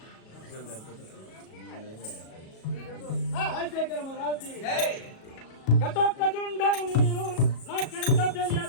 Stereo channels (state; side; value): late; right; 37 ms